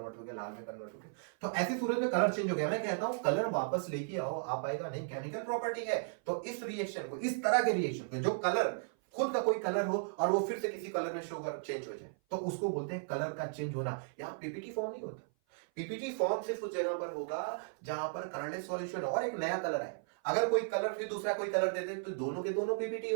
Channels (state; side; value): silent; left; 54 dB below the other